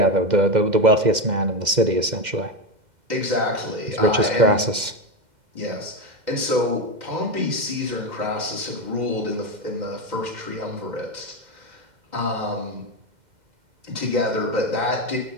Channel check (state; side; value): late; left; 2.1 ms